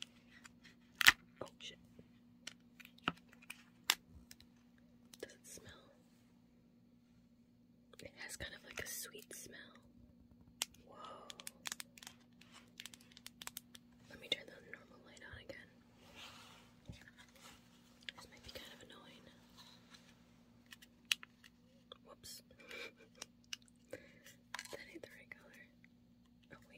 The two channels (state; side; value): identical; both; correlation 1.00